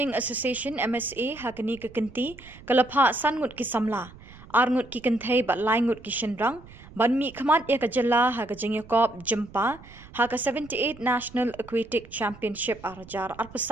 Association MSA hakani kekenti kelapha sangut ki samla arngut ki kenthai bat laingut ki shenrang banmi khamat ya kajalla ha kajengya kop jempa ha ka 78 National Aquatic Championship arajar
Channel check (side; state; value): right; noise; rumble, 20 dB below the sound